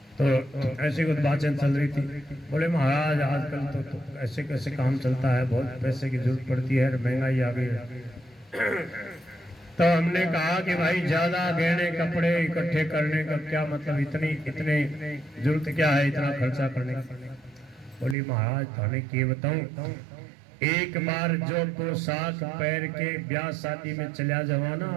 तो ऐसी कुछ बातें चल रही थी। बोले महाराज आजकल तो ऐसे कैसे काम चलता है, बहुत पैसे की जरूरत पड़ती है, महंगाई आ गई है। तो हमने कहा कि भाई ज्यादा गहने कपड़े इकट्ठे करने का क्या मतलब, इतने जरूरत क्या है इतना खर्चा करने की। बोली महाराज थाने के बताऊं, एक बार जो पोशाक पैर के ब्याह शादी में चला जवाना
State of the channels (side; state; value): left; drops out; at 18.2 s